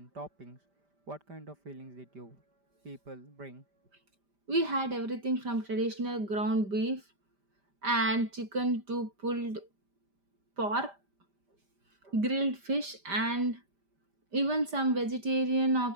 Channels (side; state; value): left; late; 5.1 ms